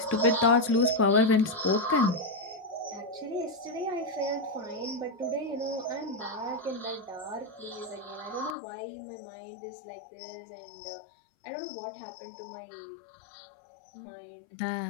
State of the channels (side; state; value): right; drops out; at 8.6 s